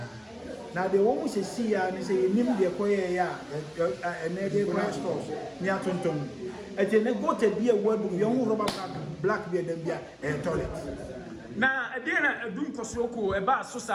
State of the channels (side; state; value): both; identical; correlation 1.00